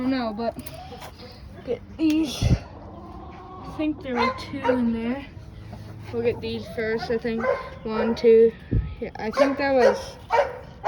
know, but get these. I think there were 2 in there. We'll get these first. I think 1, 2. Yeah, I think that was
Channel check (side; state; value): both; identical; correlation 1.00